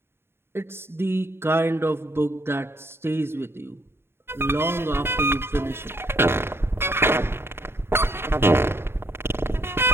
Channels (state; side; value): late; left; 0.11 ms